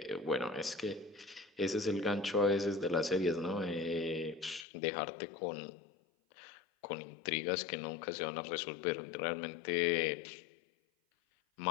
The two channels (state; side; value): drops out; right; at 4.7 s